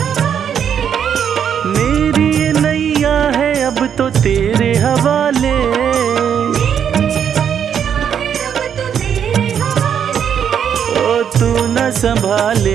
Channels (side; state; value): left; quieter; 8.3 dB